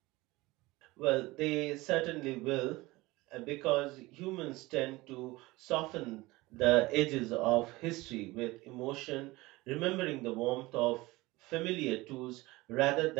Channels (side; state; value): left; quieter; 20.8 dB